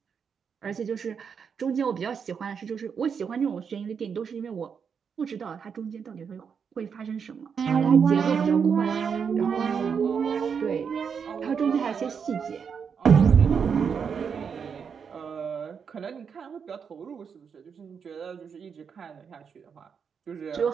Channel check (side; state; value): left; quieter; 6.6 dB